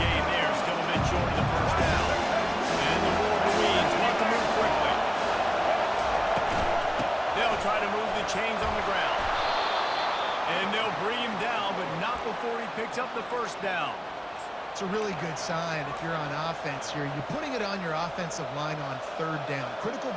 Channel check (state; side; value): identical; both; correlation 1.00